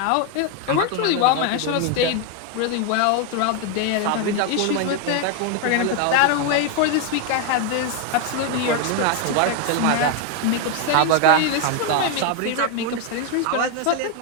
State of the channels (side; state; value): both; different; correlation 0.01